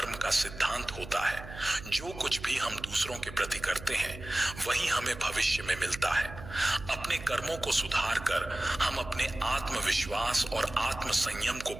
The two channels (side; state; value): right; noise; hum, 13 dB below the sound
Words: का सिद्धांत होता है। जो कुछ भी हम दूसरों के प्रति करते हैं वही हमें भविष्य में मिलता है। अपने कर्मों को सुधार कर हम अपने आत्मविश्वास और आत्म संयम को